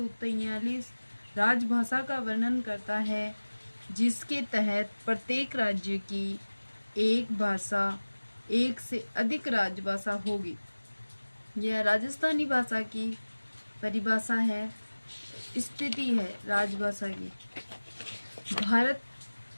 राजभाषा का वर्णन करता है, जिसके तहत प्रत्येक राज्य की एक भाषा, एक से अधिक राजभाषा होगी। यह राजस्थानी भाषा की परिभाषा है, स्थिति है राजभाषा की। भारत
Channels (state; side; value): inverted; both; correlation -1.00